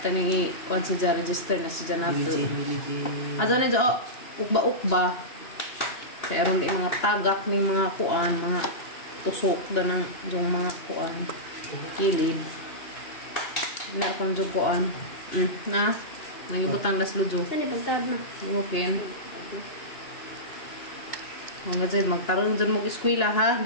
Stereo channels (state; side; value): late; right; 2.9 ms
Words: tani kuan sa ja register na si Janato. Adong ni jo ukba-ukba. Kaya ron di mga tagak ni mga kuan, mga tusok da ng yung mga kuan kilid. Na kon jo kuan. Na nagibutang las lujo. Saan ipagtawad mo? Okay. Mga dyan, magtarong dyan mong eskwela ha.